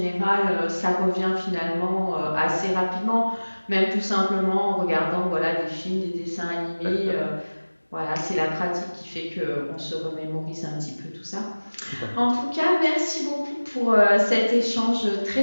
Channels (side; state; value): both; inverted; correlation -1.00